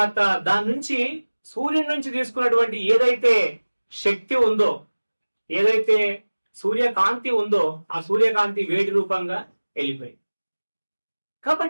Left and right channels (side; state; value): both; inverted; correlation -1.00